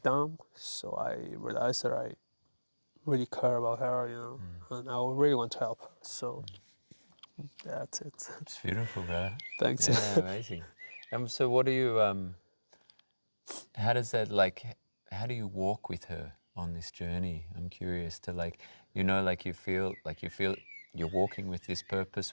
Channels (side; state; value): both; inverted; correlation -1.00